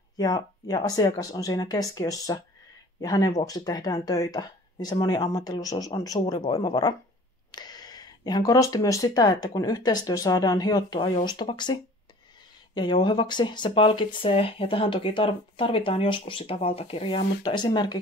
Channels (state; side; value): normal; both; correlation 0.47